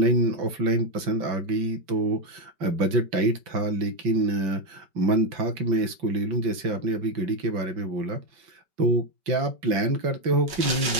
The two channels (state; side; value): late; left; 5.2 ms